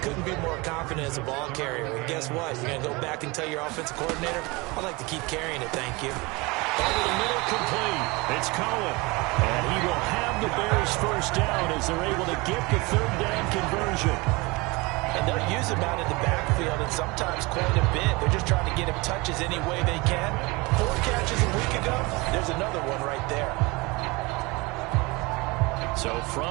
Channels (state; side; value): quieter; left; 24.9 dB